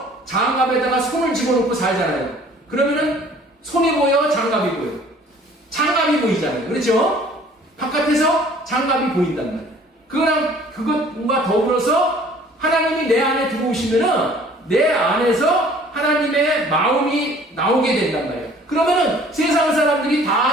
장갑에다가 손을 집어넣고 살잖아요. 그러면은 손이 보여, 장갑이 보여. 장갑이 보이잖아요. 그렇죠? 바깥에서 장갑이 보인단 말이에요. 그것과 더불어서 하나님이 내 안에 들어오시면은 내 안에서 하나님의 마음이 나오게 된단 말이에요. 그러면은 세상 사람들이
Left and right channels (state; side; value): normal; both; correlation 0.53